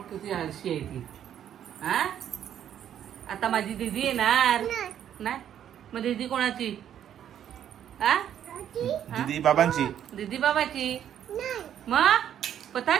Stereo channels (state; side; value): quieter; left; 10.0 dB